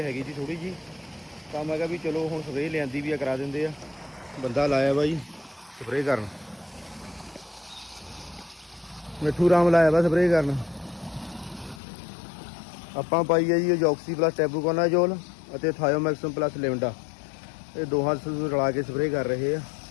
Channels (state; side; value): drops out; right; at 11.8 s